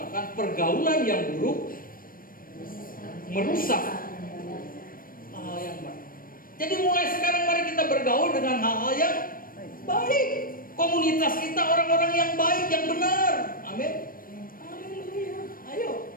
pergaulan yang buruk merusak hal yang baik. Jadi mulai sekarang mari kita bergaul dengan hal-hal yang baik. Komunitas kita orang-orang yang baik, yang benar. Amin. Haleluya. Ayo.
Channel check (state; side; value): late; right; 0.41 ms